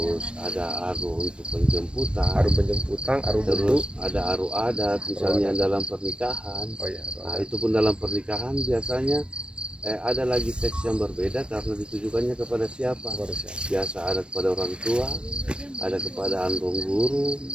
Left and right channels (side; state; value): left; late; 0.056 ms